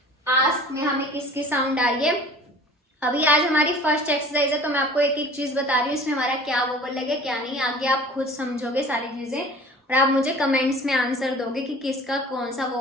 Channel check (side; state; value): both; normal; correlation 0.45